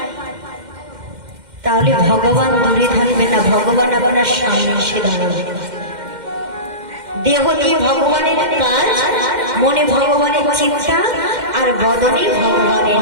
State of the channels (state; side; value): late; left; 2.1 ms